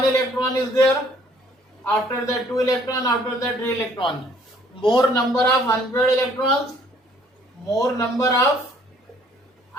electron is there, after that 2 electron, after that 3 electron. More number of unpaired electrons, more number of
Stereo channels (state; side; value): normal; both; correlation 0.60